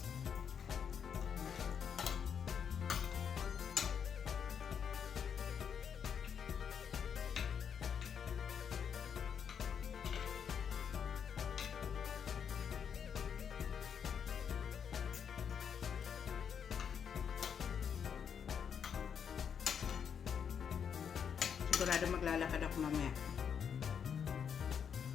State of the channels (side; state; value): right; quieter; 7.5 dB